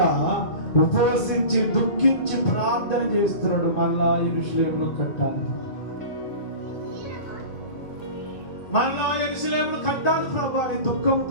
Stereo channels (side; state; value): right; late; 2.3 ms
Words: ఉపవసించి దుఃఖించి ప్రార్థన చేస్తున్నాడు. మళ్ళా యెరూషలేమును కట్టాలి, మళ్ళా యెరూషలేమును కట్టాలి ప్రభు అని